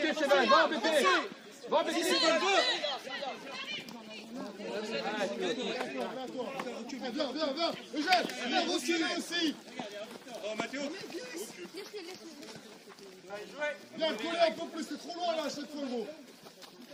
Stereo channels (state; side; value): identical; both; correlation 1.00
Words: Cheval, va embêter. Viens. Eugène, viens reculer aussi. Oh, Mathéo. Viens coller un peu plus, c'est trop loin là à chaque fois gros.